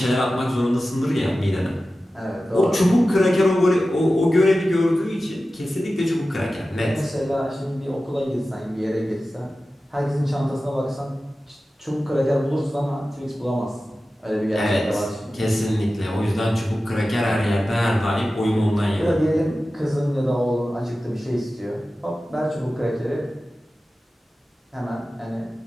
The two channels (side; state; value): both; normal; correlation 0.94